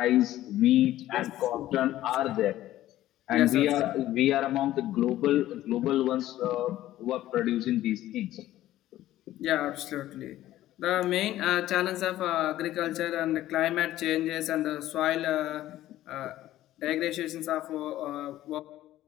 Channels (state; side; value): quieter; right; 14.3 dB